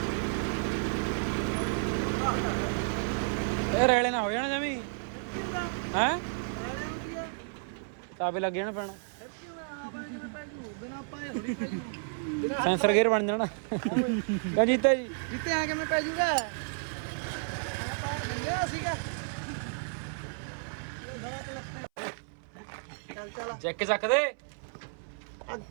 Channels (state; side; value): silent; left; 57 dB below the other